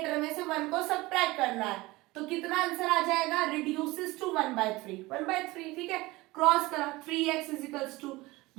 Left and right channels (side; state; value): left; quieter; 20.8 dB